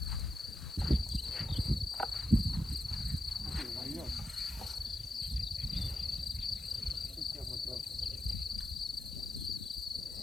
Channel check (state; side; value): noise; left; hiss, 21 dB below the sound